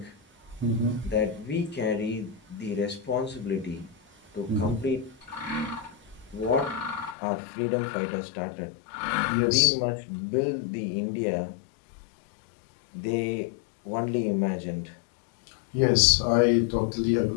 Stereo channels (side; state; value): right; drops out; at 7.2 s